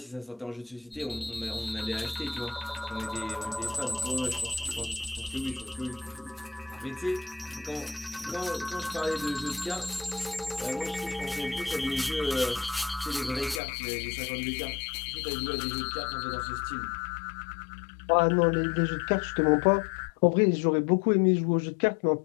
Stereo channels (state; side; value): drops out; right; at 13.6 s